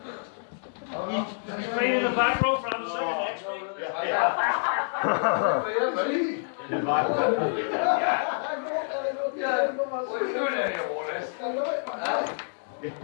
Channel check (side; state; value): right; silent; digital silence